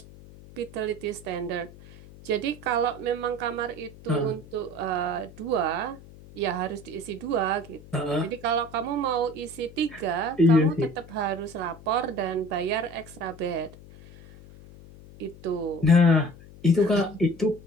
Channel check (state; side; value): noise; left; hum, 19 dB below the sound